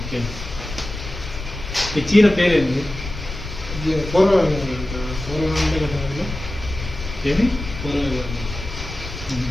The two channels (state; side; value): noise; left; rumble, 9 dB below the sound